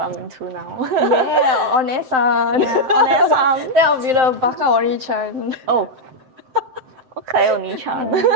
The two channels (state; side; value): late; left; 7.7 ms